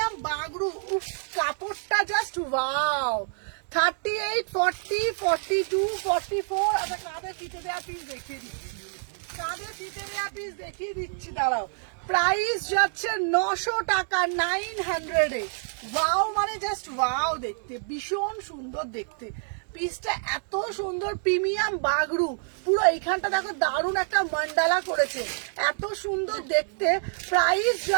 বাগরু। উফ, কাপড়টা জাস্ট ওয়াও। 38, 40, 42, 44। আচ্ছা, কাঁধে ফিতে দেওয়া পিস দেখিয়ে দিচ্ছি, কাঁধে ফিতে দেওয়া পিস দেখিয়ে দিচ্ছি, দাঁড়াও। প্রাইস যাচ্ছে 900 টাকা, 900 এ। ওয়াও মানে জাস্ট ওয়াও দেখতে, ভীষণ সুন্দর দেখতে পিসটা, এত সুন্দর প্রিমিয়াম বাগরু। পুরো এইখানটা দেখো দারুণ একটা মান্ডালা করেছে, এত সুন্দর দেখতে। প্রাইস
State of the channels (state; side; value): silent; left; 60 dB below the other